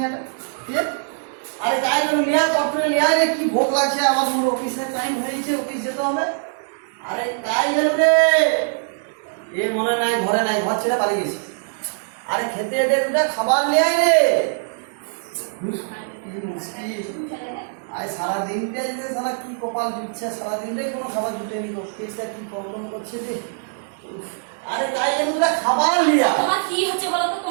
কে আরে গায়ে গেল নিয়া করতে নিয়া রে কি ভোগ লাগছে আবার মোর অফিসে টাইম হয়েছে অফিসে তো হবে। আরে গায়ে গেল রে এ মনে নাই ঘরে নাই ঘর ছেড়ে পালিয়ে গেছে। আরে খেতে এদের দুটা খাবার নিয়ে আয় রে কি মুশকিল আজ সারাদিনটা যে সারা কি কপাল জুটছে সারাদিনটাই কোনো খাবার জুটেনি অফিসটা কি প্রবলেম করছে রে। আরে গায়ে গেল খাবার লিয়া তোমার কি হচ্ছে বলো তো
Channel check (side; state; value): left; silent; digital silence